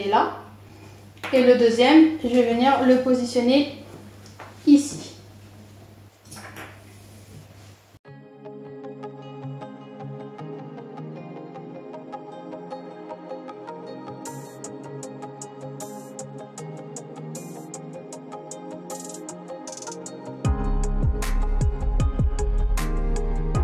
là. Et le deuxième, je vais venir le positionner ici.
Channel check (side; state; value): both; identical; correlation 1.00